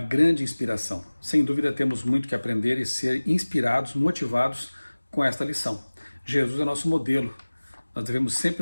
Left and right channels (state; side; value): inverted; both; correlation -1.00